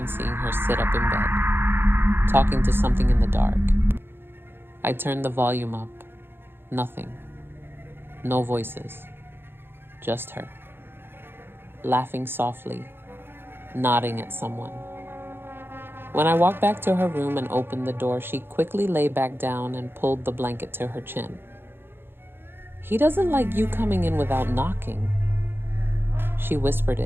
seeing her sit up in bed, talking to something in the dark. I turned the volume up. Nothing. No voices. Just her. Laughing softly, nodding at someone. When I walked back to her room and opened the door, she quickly lay back down and pulled the blanket to her chin. "He doesn't like you coming in without knocking." She whispered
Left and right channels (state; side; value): late; left; 0.10 ms